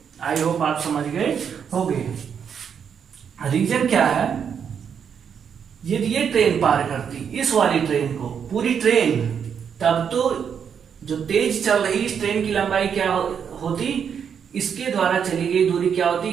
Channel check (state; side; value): quieter; left; 7.4 dB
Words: आई होप आप समझ गए होंगे। रीजन क्या है, यदि ये ट्रेन पार करती इस वाली ट्रेन को, पूरी ट्रेन, तब तो जो तेज चल रही इस ट्रेन की लंबाई क्या होती, इसके द्वारा चली गई दूरी क्या होती,